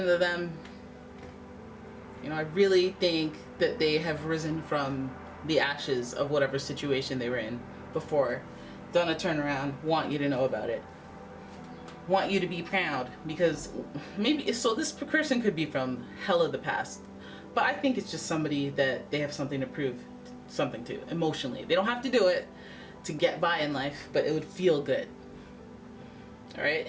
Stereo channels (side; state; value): both; identical; correlation 1.00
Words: of them. I really think that they have risen from the ashes of whatever situation they were in before, done a turnaround, want you to know about it, want you to be proud, because maybe, so this person could be from hell of the past, but I think it's just somebody that they have something to prove something to emotionally. They don't have to do it to get by in life, but it would feel good. All right,